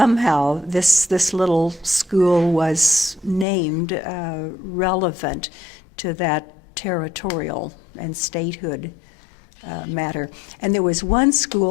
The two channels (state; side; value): drops out; right; at 3.5 s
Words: this little school was named relevant to that territorial and statehood matter. And there was one